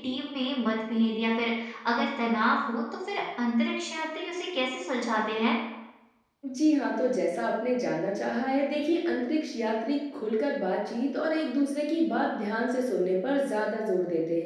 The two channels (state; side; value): identical; both; correlation 1.00